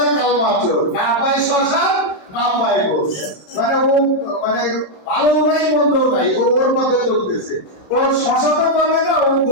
কালমা চোর, না পায় শ্মশান না পায় গোস, মানে ও মানে ভালো নাই মন্দও নাই, ও ওর মধ্যে চলতেছে, ওর শ্মশানও পাবে না, ও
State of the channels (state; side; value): late; right; 27 ms